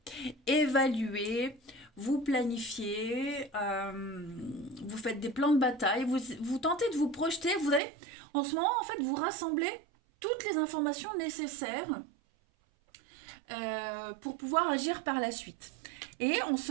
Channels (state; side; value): drops out; left; at 7.8 s